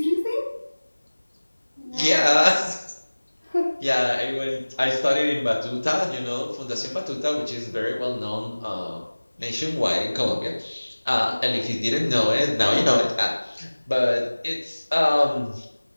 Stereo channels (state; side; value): inverted; both; correlation -1.00